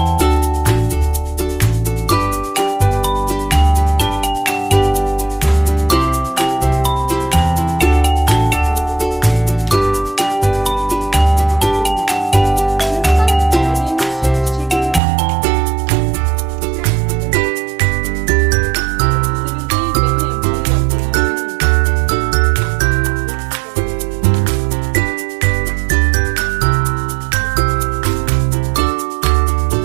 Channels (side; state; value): left; drops out; at 15.0 s